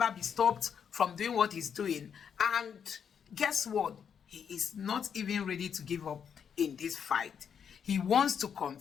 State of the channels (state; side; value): quieter; right; 7.5 dB